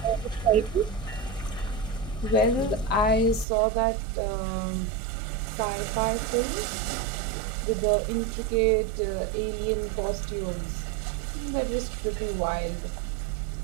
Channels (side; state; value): left; drops out; at 3.5 s